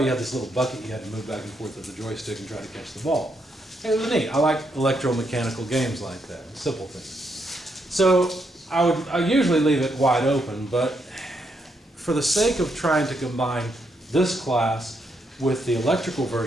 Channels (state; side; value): normal; both; correlation 0.78